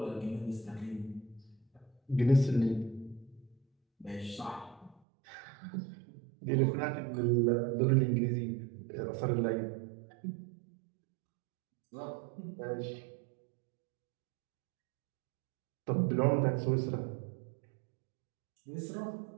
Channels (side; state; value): left; drops out; at 5.0 s